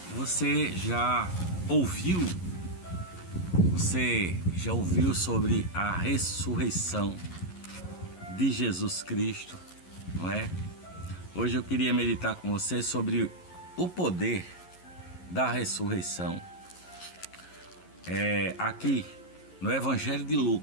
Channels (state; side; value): late; right; 11 ms